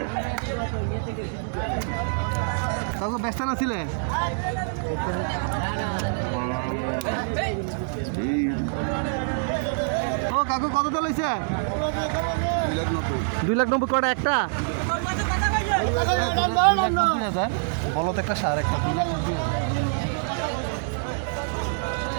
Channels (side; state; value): left; silent; 58 dB below the other